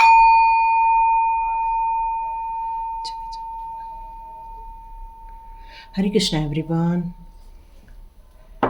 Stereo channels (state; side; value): identical; both; correlation 1.00